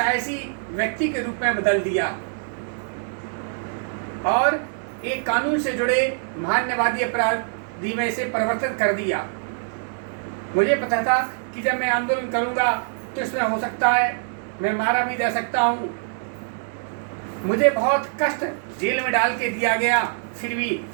व्यक्ति के रूप में बदल दिया और एक कानून से जुड़े मानववादी अपराधी में से परिवर्तित कर दिया। मुझे पता था कि जब मैं आंदोलन करूंगा तो इसमें हो सकता है मैं मारा भी जा सकता हूँ। मुझे बहुत कष्ट जेल में डाल के दिया गया, फिर भी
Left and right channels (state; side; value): silent; left; digital silence